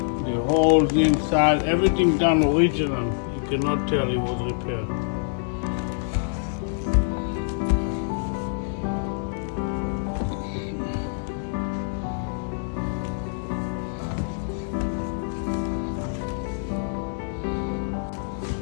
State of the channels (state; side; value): silent; right; digital silence